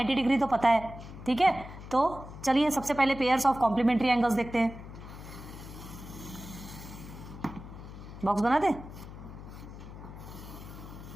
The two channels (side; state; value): left; noise; hum, 13 dB below the sound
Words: डिग्री तो पता है, ठीक है। तो चलिए सबसे पहले पेयर्स ऑफ कॉम्प्लीमेंट्री एंगल्स देखते हैं। बॉक्स बना दे,